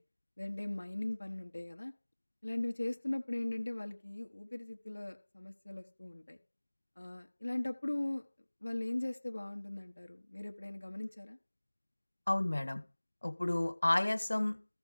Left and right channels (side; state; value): both; inverted; correlation -1.00